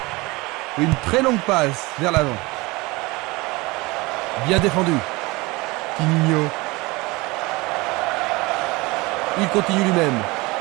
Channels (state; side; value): quieter; left; 23.3 dB